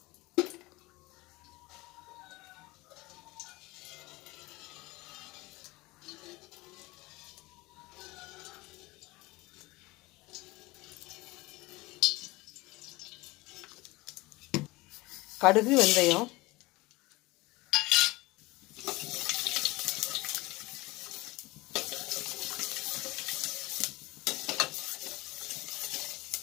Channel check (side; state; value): right; quieter; 21.8 dB